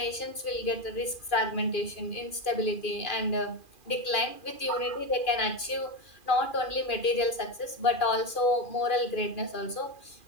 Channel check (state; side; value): late; right; 2.4 ms